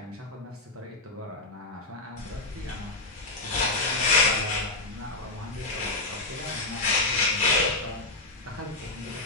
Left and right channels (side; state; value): right; quieter; 3.0 dB